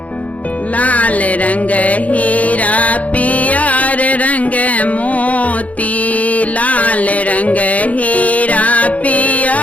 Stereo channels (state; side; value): late; right; 0.069 ms